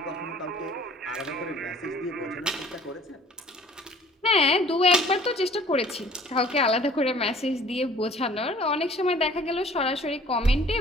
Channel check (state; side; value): normal; both; correlation 0.52